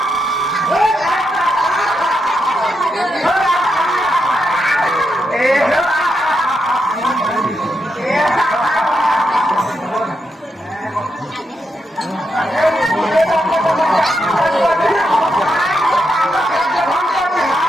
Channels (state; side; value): normal; both; correlation 0.83